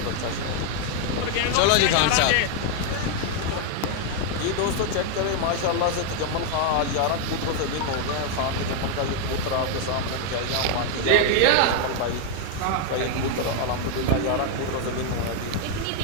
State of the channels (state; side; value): different; both; correlation 0.00